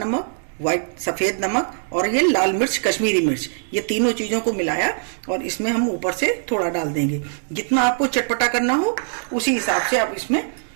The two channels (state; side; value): silent; left; digital silence